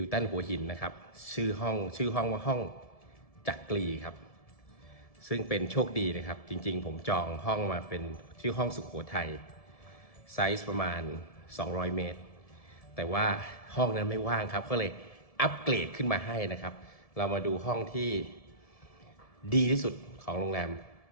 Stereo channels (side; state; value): right; late; 1.7 ms